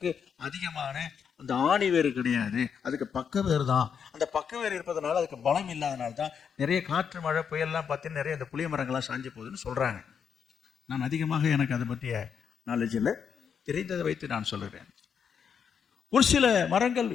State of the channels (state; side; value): quieter; right; 7.1 dB